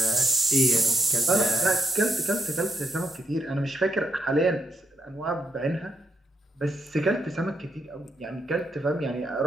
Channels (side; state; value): both; normal; correlation 0.78